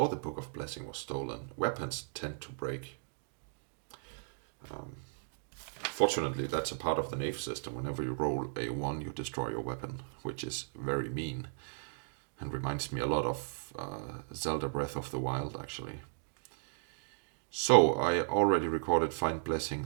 the Book of Blessing was stolen. Weapons tend to break. Fortunately, that's a part of the Knave system. Whenever you roll a 1, you destroy your weapon, which is very mean. And reminds me a lot of Zelda Breath of the Wild, actually. So, I already recorded Find Blessing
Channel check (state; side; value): silent; left; digital silence